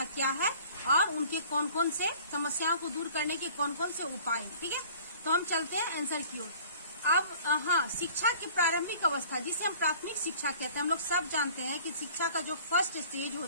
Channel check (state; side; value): inverted; both; correlation -0.49